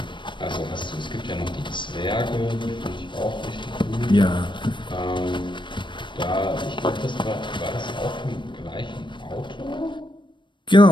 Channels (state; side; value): late; right; 0.23 ms